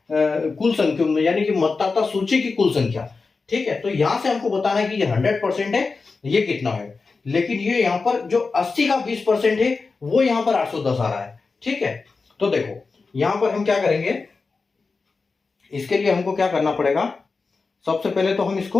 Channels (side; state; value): right; quieter; 4.3 dB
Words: कुल संख्या में, यानी कि मतदाता सूची की कुल संख्या। ठीक है, तो यहां से हमको बताना है कि ये 100% है, ये कितना है। लेकिन ये यहां पर जो 80 का 20% है वो यहां पर 810 आ रहा है। ठीक है, तो देखो यहां पर हम क्या करेंगे, इसके लिए हमको क्या करना पड़ेगा, सबसे पहले तो हम इसको